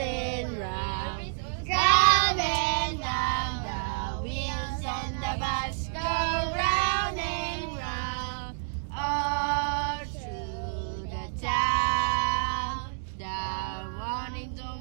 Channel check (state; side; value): silent; left; digital silence